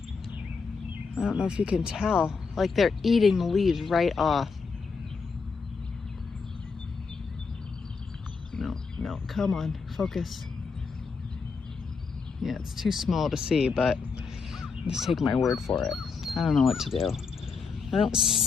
I don't know if you can tell. Like they're eating the leaves right off. No, come on, focus. Yeah, it's too small to see, but just take my word for it. I don't know what to do. I don't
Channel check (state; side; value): quieter; right; 5.0 dB